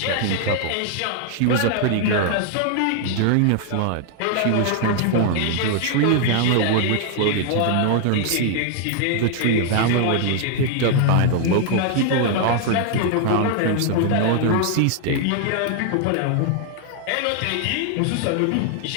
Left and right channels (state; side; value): different; both; correlation 0.00